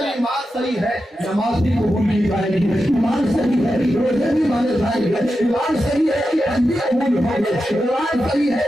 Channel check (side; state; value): both; normal; correlation 0.90